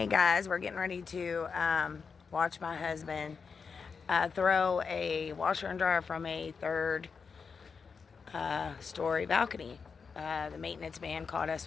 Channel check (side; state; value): right; quieter; 5.5 dB